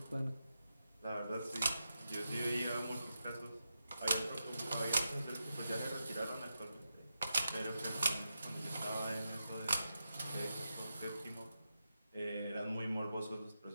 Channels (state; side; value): inverted; both; correlation -0.88